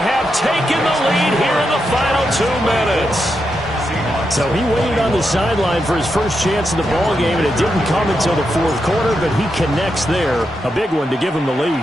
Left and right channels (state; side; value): normal; both; correlation 0.85